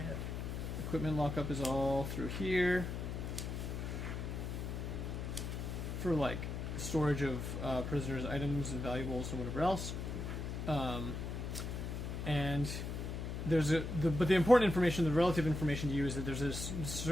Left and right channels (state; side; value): noise; left; hum, 4 dB below the sound